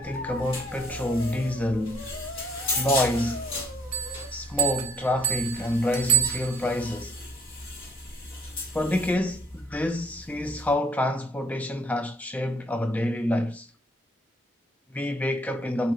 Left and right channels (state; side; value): normal; both; correlation 0.59